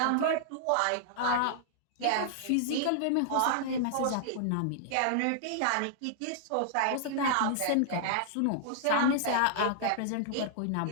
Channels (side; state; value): both; different; correlation -0.01